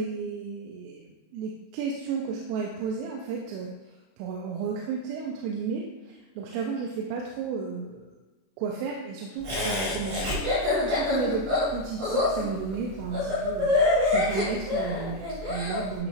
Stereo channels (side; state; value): left; late; 31 ms